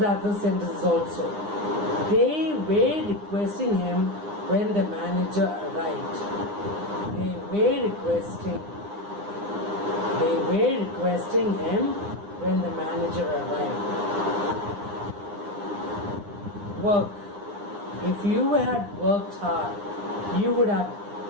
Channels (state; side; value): late; left; 9.8 ms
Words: other sentences also. They were requesting him when the manager arrived. They were requesting him when the manager arrived. Work. If you had worked hard, you would have